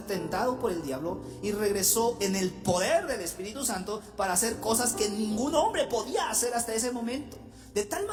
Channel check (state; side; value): identical; both; correlation 1.00